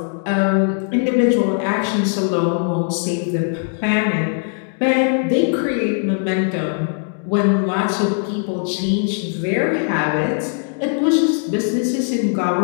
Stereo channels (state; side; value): silent; right; 56 dB below the other